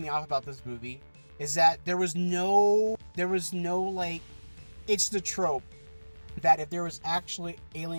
off about this movie is that there was no like, it's the trope that if there was actually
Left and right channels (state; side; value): inverted; both; correlation -1.00